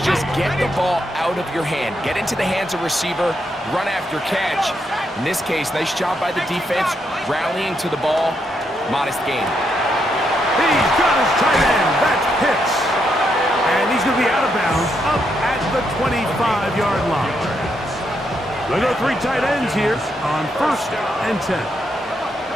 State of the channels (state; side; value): normal; both; correlation 0.79